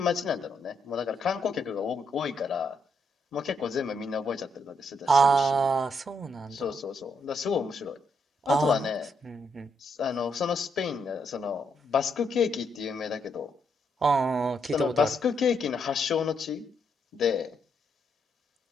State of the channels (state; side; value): normal; both; correlation 0.76